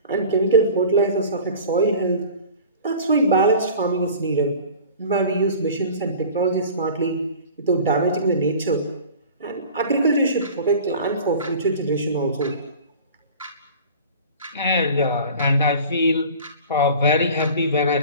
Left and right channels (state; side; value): inverted; both; correlation -0.41